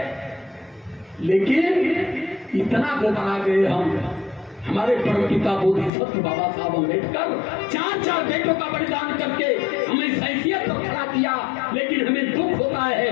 लेकिन इतना घबरा गए हम, हमारे परमपिता बोधिसत्व बाबा साहब अम्बेडकर 4 बेटों का बलिदान करके हमें इस हैसियत पर खड़ा किया, लेकिन हमें दुख होता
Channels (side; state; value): right; drops out; at 5.9 s